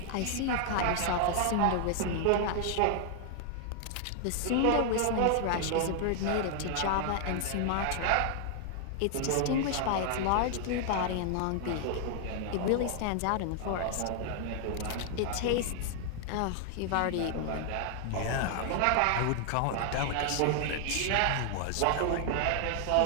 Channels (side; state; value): both; different; correlation 0.00